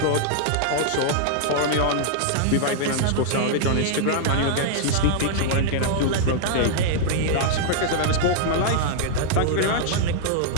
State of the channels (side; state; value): both; different; correlation -0.01